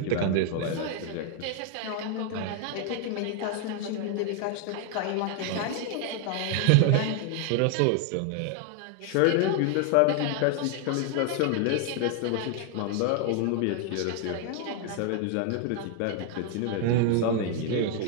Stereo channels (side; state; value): both; different; correlation 0.00